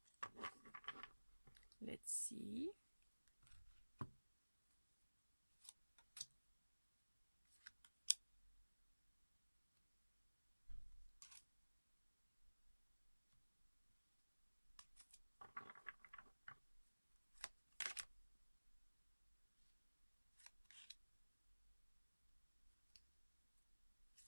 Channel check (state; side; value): inverted; both; correlation -1.00